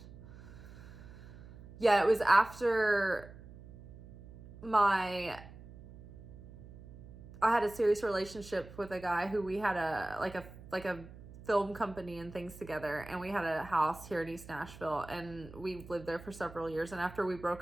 Yeah, it was after I had a serious relationship with a guy who we had a film company and things together, and we had a house here in East Nashville, and we lived there for several years. And after we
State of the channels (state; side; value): noise; right; hum, 17 dB below the sound